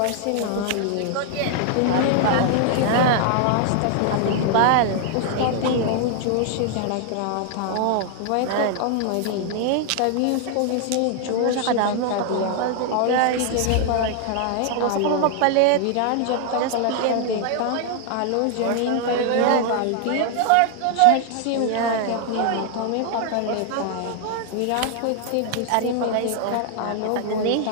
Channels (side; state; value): both; different; correlation 0.00